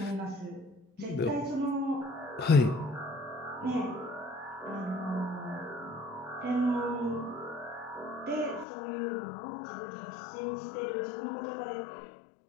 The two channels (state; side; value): drops out; right; at 8.7 s